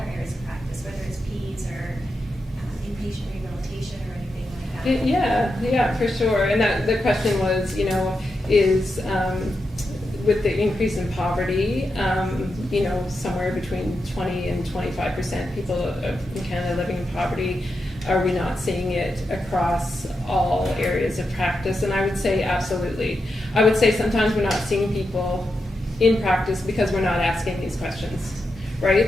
areas of practice, whether it's PEDS or inpatient rehabilitation or anything like that. Yeah, for sure. And the question was, is with the increase in poverty, somewhere between 20 and 25% people in Canada living in poverty, are we not seeing it across all areas of practice? And I would say absolutely. I would say sometimes we're not seeing people in practice because we're not asking these questions,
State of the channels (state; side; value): normal; both; correlation 0.87